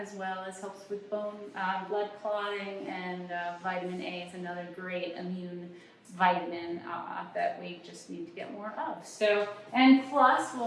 well as helps with bone blood clotting, and vitamin A is another great immune vitamin that we just need to get more of. So, and plus,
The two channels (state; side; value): identical; both; correlation 1.00